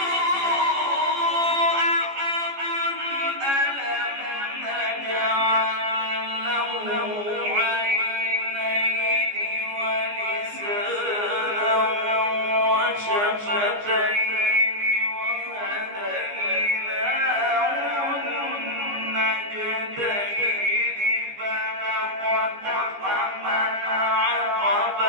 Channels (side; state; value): left; late; 15 ms